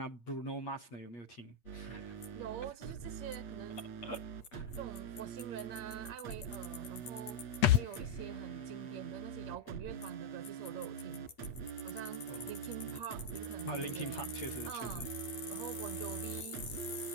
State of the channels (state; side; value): late; right; 8.5 ms